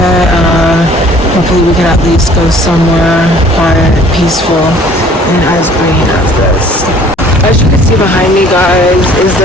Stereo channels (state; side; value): normal; both; correlation 0.54